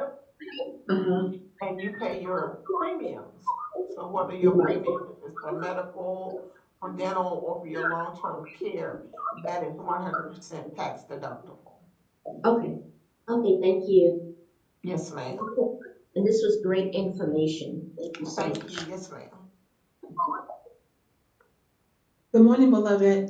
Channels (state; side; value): identical; both; correlation 1.00